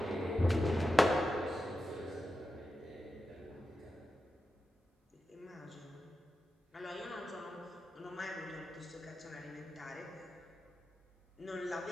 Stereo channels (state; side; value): normal; both; correlation 0.90